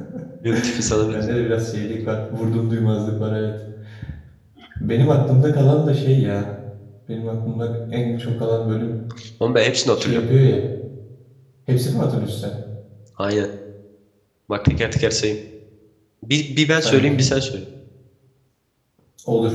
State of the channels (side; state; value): both; identical; correlation 1.00